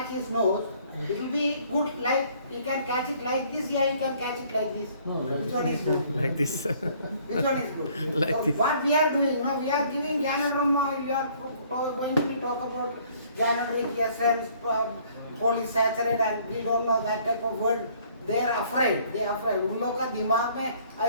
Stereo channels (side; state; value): both; inverted; correlation -0.60